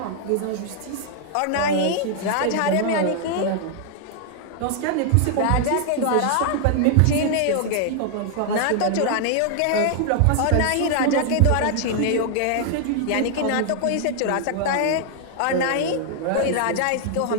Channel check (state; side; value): different; both; correlation 0.00